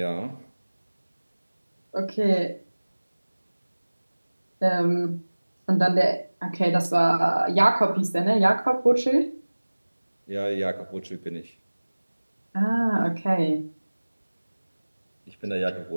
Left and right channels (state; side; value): inverted; both; correlation -1.00